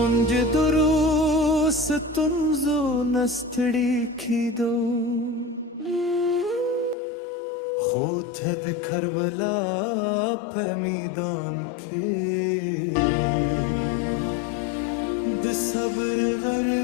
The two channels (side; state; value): right; drops out; at 7.0 s